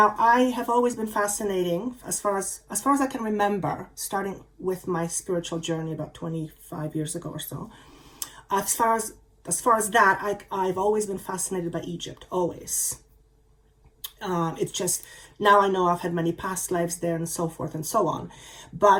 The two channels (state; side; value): identical; both; correlation 1.00